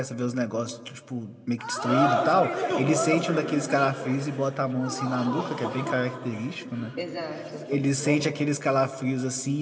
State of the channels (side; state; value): both; identical; correlation 1.00